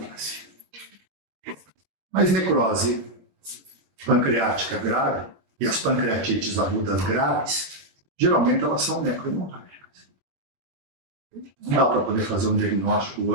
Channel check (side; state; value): left; late; 21 ms